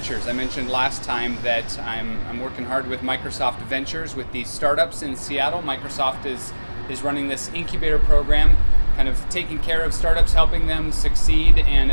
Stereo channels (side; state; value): both; inverted; correlation -1.00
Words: I mentioned last time that I'm working hard with Microsoft Ventures with these startups in Seattle. Microsoft is running this incubator program, kind of taking care of startups, helping them succeed, and